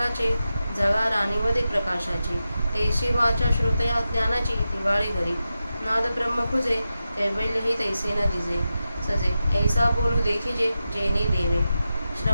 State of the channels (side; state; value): both; inverted; correlation -0.91